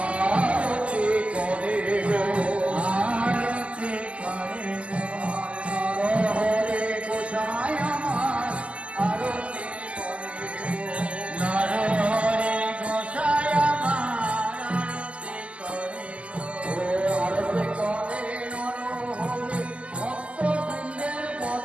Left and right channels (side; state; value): left; late; 0.060 ms